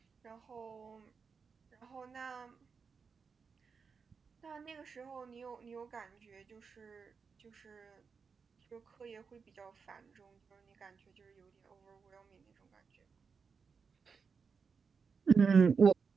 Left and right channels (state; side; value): quieter; left; 5.5 dB